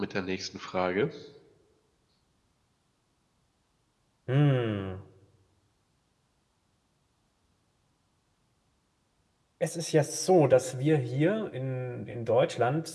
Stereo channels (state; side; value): identical; both; correlation 1.00